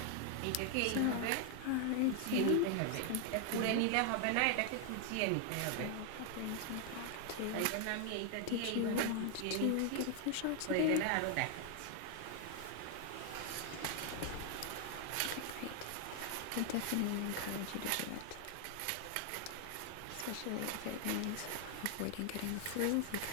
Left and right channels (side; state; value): both; different; correlation 0.00